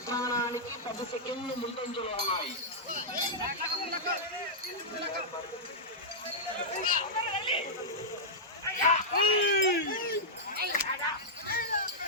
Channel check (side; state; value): both; normal; correlation -0.10